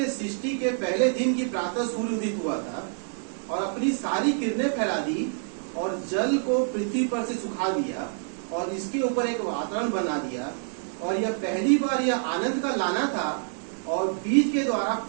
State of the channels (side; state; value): left; silent; digital silence